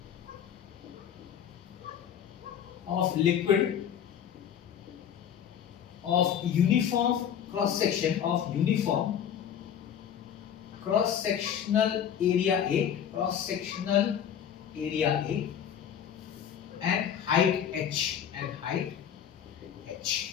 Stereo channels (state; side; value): quieter; right; 9.0 dB